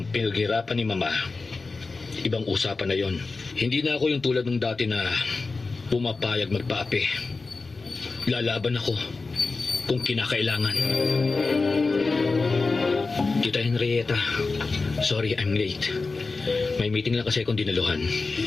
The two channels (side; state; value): right; quieter; 3.9 dB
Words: pinaghirapan ni Mama, ibang usapan na yon. Hindi na ako yung tulad ng dati na pumapayag magpaapi. lalaban ako kung kinakailangan. Tita Henrietta, sorry I'm late. May meeting lang kasi akong dinaluhan.